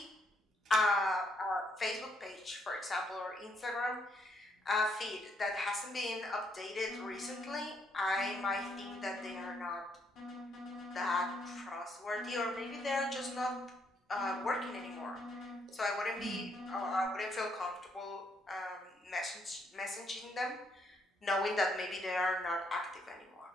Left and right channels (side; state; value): both; normal; correlation 0.73